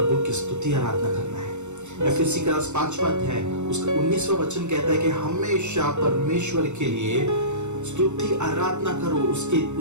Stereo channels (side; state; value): left; late; 0.83 ms